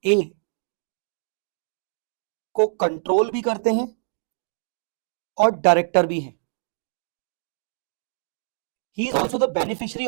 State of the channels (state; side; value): silent; left; digital silence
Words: ए को कंट्रोल भी करते हैं और डायरेक्टर भी हैं। He is also the beneficiary